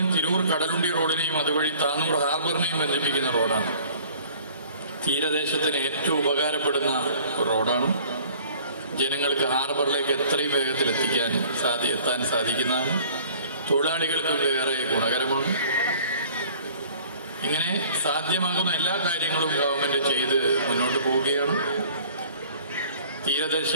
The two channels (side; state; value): both; inverted; correlation -0.51